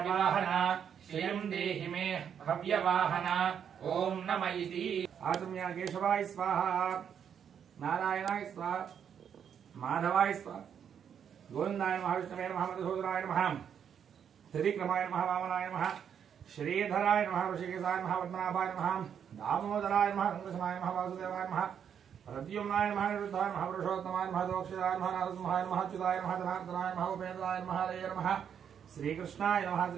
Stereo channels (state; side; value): quieter; left; 8.1 dB